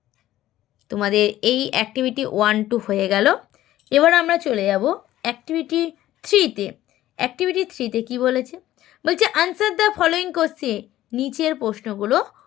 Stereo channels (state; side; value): quieter; right; 14.2 dB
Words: তোমাদের এই অ্যাক্টিভিটি 1, 2 হয়ে গেল। এবার আমরা চলে যাব অ্যাক্টিভিটি 3-তে। অ্যাক্টিভিটি 3-তে কী বলেছে? বলছে আনসার দ্য ফলোয়িং কোশ্চেন, নিচের প্রশ্নগুলো